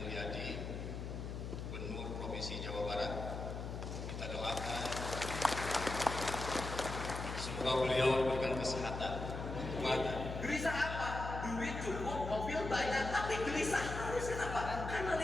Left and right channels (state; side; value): noise; left; hum, 6 dB below the sound